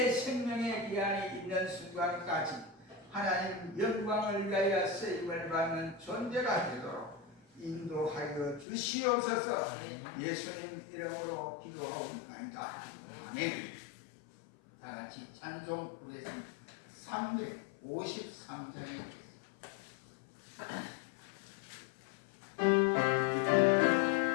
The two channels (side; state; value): right; drops out; at 8.7 s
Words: 생명의 기한이 있는 순간까지 하나님 영광을 위하여 쓰임을 받는 존재가 되도록 인도하여 주시옵소서. 예수님 이름으로 기도하옵나이다. 아멘. 다 같이 찬송 부르겠습니다. 353장에